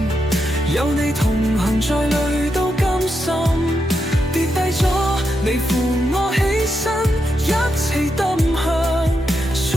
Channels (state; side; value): normal; both; correlation 0.84